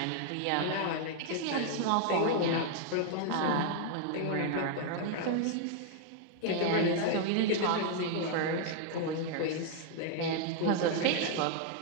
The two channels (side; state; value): both; different; correlation 0.00